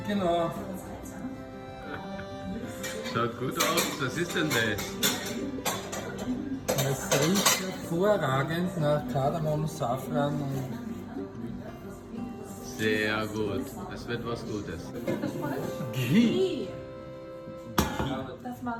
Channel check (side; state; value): both; identical; correlation 1.00